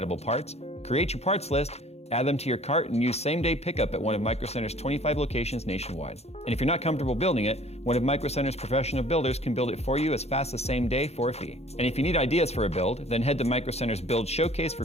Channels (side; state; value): right; late; 0.31 ms